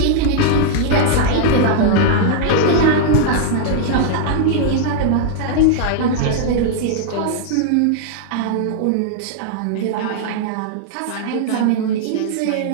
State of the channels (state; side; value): different; both; correlation -0.01